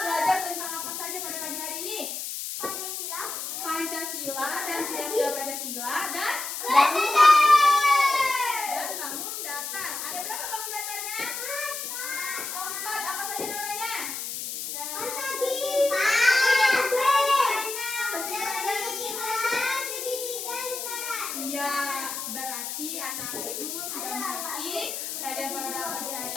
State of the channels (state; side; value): noise; left; hiss, 5 dB below the sound